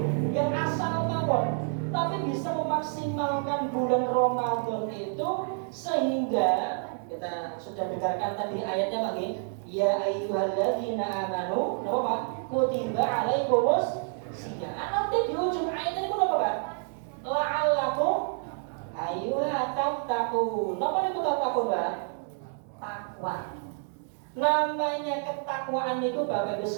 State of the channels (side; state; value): left; silent; 59 dB below the other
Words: yang asal tawon, tapi bisa memaksimalkan bulan Ramadan itu sehingga kita sudah dengarkan tadi ayatnya lagi, ya ayyuhalladzina amanu, napa Pak? Kutiba alaikumus siyam. Nanti di ujung ayat ini napa Pak? La'allakum tattaqun. Napa niku tattaqun, Pak? Takwa. Namanya ketakwaan itu Bapak Ibu